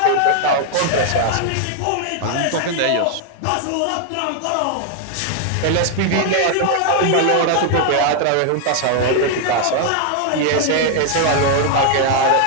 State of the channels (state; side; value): different; both; correlation 0.00